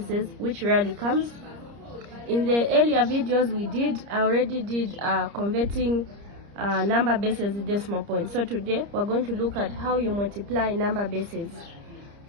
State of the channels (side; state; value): left; late; 30 ms